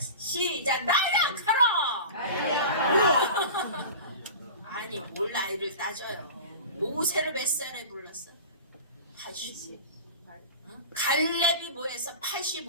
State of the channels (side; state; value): both; inverted; correlation -0.34